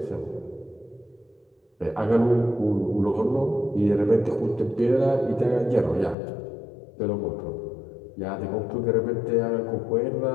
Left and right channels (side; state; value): right; drops out; at 6.2 s